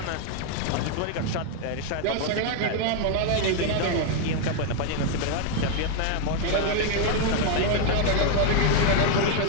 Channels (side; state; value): both; different; correlation 0.00